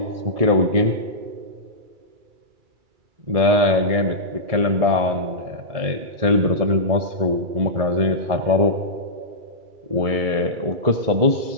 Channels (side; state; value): left; late; 1.7 ms